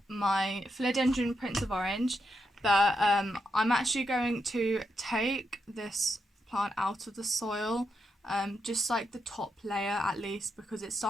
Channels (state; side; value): normal; both; correlation 0.83